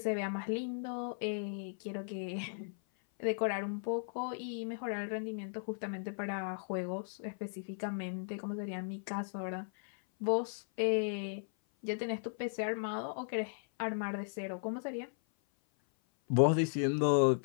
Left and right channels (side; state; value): right; silent; 54 dB below the other